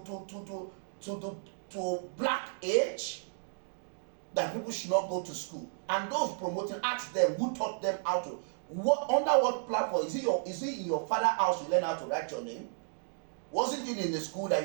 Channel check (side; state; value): left; silent; digital silence